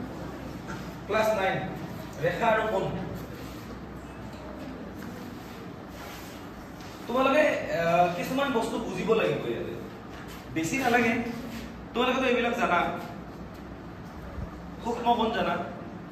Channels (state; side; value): identical; both; correlation 1.00